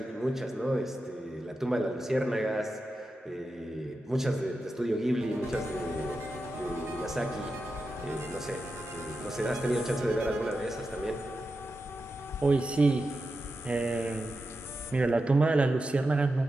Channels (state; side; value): normal; both; correlation 0.90